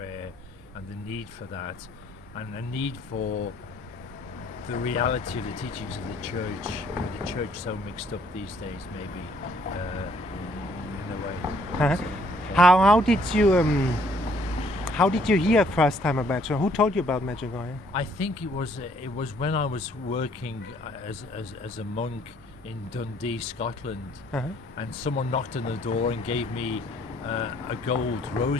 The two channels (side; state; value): both; normal; correlation 0.64